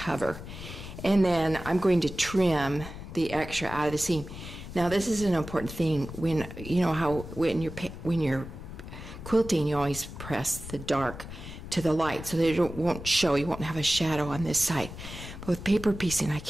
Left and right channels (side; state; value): left; noise; rumble, 11 dB below the sound